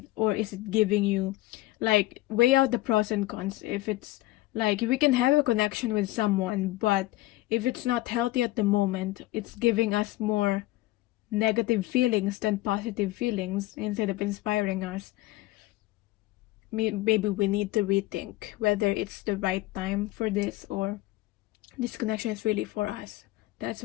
Or is it giving you, like, weigh out the pros and cons. If it's like we can have a connection with someone, but if it's not healthy at the moment, it's giving us more negative feelings than positive feelings instead of inspiring us. Maybe we need to rethink whether it's the right time for this or this connection is really for us. That's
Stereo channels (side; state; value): right; quieter; 17.9 dB